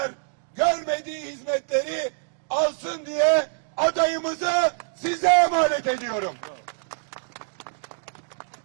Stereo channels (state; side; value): silent; left; digital silence